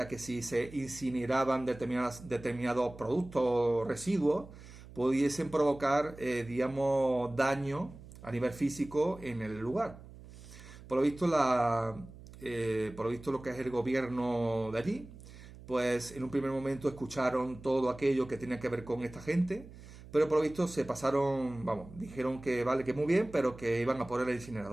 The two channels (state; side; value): noise; right; hum, 17 dB below the sound